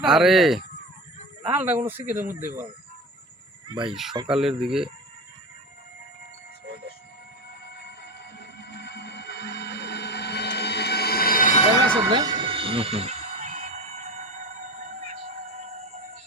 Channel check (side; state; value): both; normal; correlation 0.24